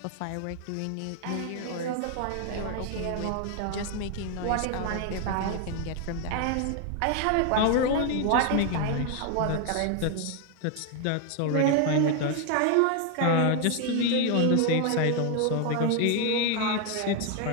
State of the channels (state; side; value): different; both; correlation 0.01